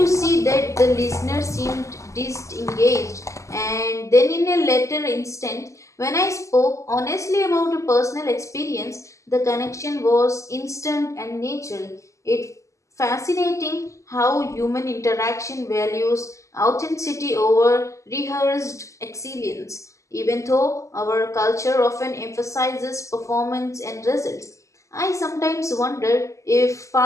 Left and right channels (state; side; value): late; right; 0.15 ms